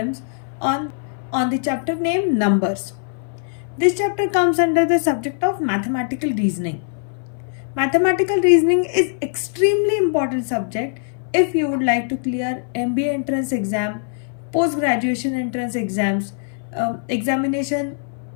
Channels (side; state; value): right; silent; 58 dB below the other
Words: on the chapter named Numbers. This chapter comes under the subject of mathematical reasoning. Mathematical reasoning is extremely important subject if you would like to clear MBA entrance exam, post-graduation entrance exams, examination